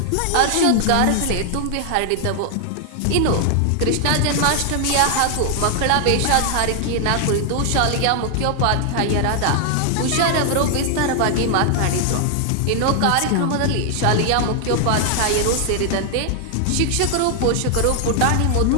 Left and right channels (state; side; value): different; both; correlation 0.00